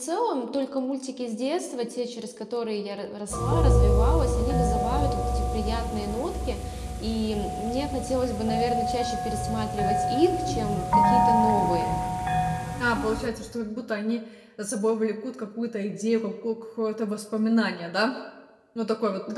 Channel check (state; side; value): identical; both; correlation 1.00